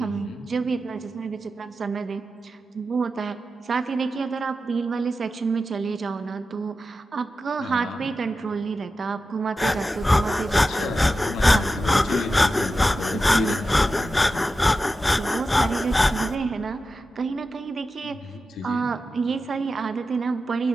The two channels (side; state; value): both; normal; correlation 0.91